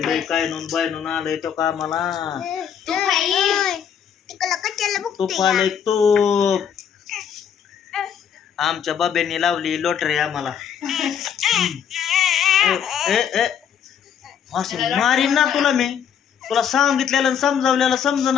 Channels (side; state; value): right; quieter; 8.3 dB